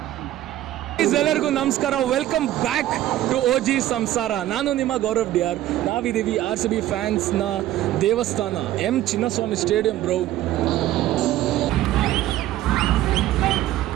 ಎಲ್ಲರಿಗೂ ನಮಸ್ಕಾರ, ವೆಲ್ಕಮ್ ಬ್ಯಾಕ್ ಟು OG ಸಂಸಾರ. ನಾನು ನಿಮ್ಮ ಗೌರವ್ DR. ನಾವಿದ್ದೀವಿ RCB ಫ್ಯಾನ್ಸ್ನ ದೇವಸ್ಥಾನ M Chinnaswamy stadium bro.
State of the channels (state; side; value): quieter; left; 14.0 dB